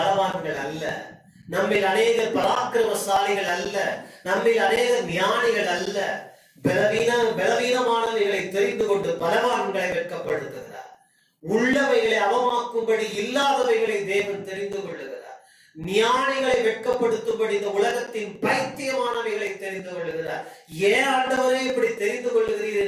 அல்ல, நம்மில் அநேகர் பராக்கிரமசாலிகள் அல்ல, நம்மில் அநேகர் ஞானிகள் அல்ல. பலவீனமானவைகளை தெரிந்து கொண்டு பலவான்களை வெட்கப்படுத்துகிறார். உள்ளவைகளை அவமாக்கும்படி இல்லாதவைகளை தேவன் தெரிந்து கொள்ளுகிறார். ஞானிகளை வெட்கப்படுத்தும்படி இந்த உலகத்தின் பைத்தியமானவைகளை தெரிந்து கொள்ளுகிறார். ஏன் ஆண்டவரே இப்படி தெரிந்து கொள்ளுகிறீர்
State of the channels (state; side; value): identical; both; correlation 1.00